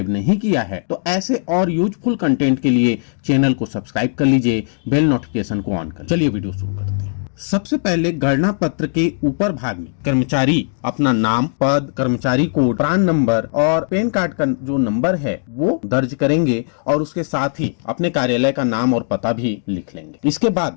नहीं किया है तो ऐसे और यूजफुल कंटेंट के लिए चैनल को सब्सक्राइब कर लीजिए, बेल नोटिफिकेशन को ऑन कर। चलिए वीडियो शुरू करते हैं। सबसे पहले गणना पत्र के ऊपर भाग में कर्मचारी अपना नाम, पद, कर्मचारी कोड, प्रान नंबर और पैन कार्ड का जो नंबर है वो दर्ज करेंगे और उसके साथ ही अपने कार्यालय का नाम और पता भी लिख लेंगे। इसके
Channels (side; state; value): right; silent; digital silence